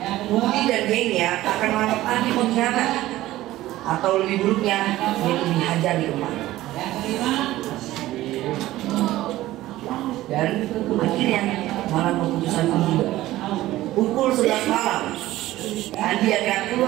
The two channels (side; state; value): left; quieter; 15.9 dB